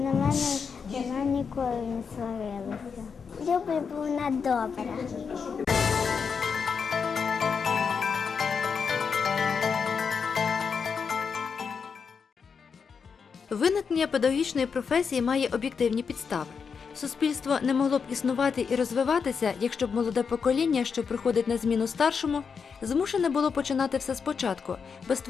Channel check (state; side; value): quieter; right; 6.0 dB